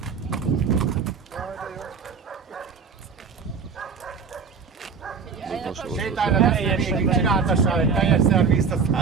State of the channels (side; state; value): left; quieter; 5.7 dB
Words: Sétálj le, végig csináltassál egy teljes szervizt,